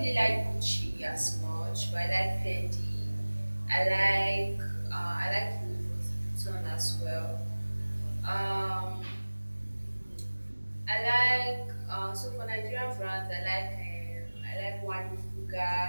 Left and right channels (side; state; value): both; inverted; correlation -1.00